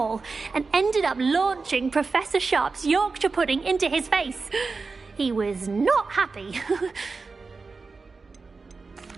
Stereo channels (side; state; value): left; quieter; 4.3 dB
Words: and ended up launching Professor Sharp's Yorkshire pudding into his face. He was not happy.